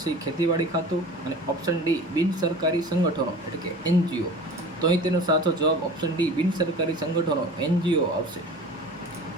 C ખેતીવાડી ખાતું અને ઓપ્શન D બિન સરકારી સંગઠનો એટલે કે NGO. તો અહીં તેનો સાચો જવાબ ઓપ્શન D બિન સરકારી સંગઠનો NGO આવશે.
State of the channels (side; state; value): both; normal; correlation 0.39